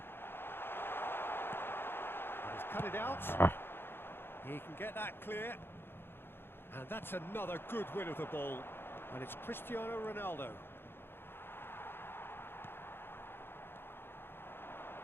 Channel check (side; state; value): right; late; 0.11 ms